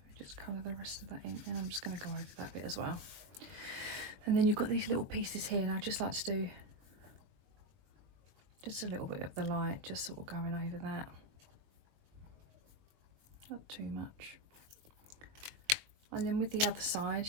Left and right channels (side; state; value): left; late; 21 ms